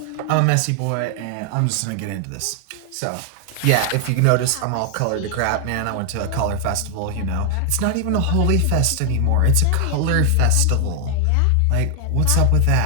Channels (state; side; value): different; both; correlation 0.00